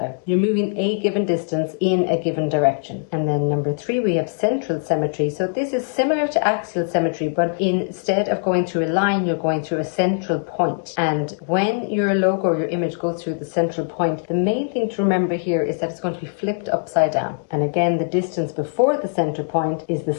You're moving a given distance in a given direction. And then number 3, we have central symmetry. So this is similar to axial symmetry, but instead of going through a line, you're going through a central point. And when your logo or your image goes through the central point, the main thing to remember here is that it's going to be flipped upside down. And again, the distance before the central point is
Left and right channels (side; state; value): right; silent; digital silence